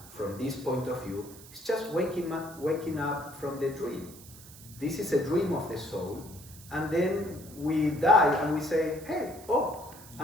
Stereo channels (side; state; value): right; noise; hiss, 18 dB below the sound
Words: from this point of view is just waking up from the dream. This is a dream of the soul, and then we die and we say, hey,